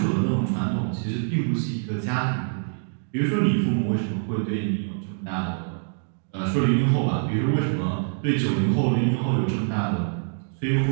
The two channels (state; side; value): silent; left; digital silence